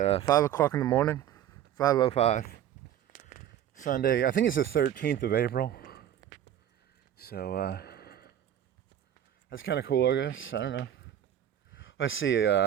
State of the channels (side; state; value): left; quieter; 10.7 dB